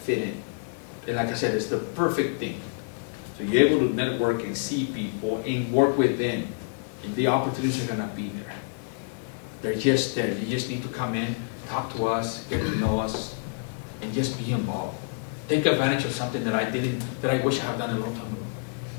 in. And like I said, it's the perfect thing. So you're able to network and see people and work with them. And the opportunities are gonna be there. They're just there. You just need to come in, talk to us, get to know us, and just be involved. Take advantage of something that I wish I had done a long time ago.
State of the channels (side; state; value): right; quieter; 35.3 dB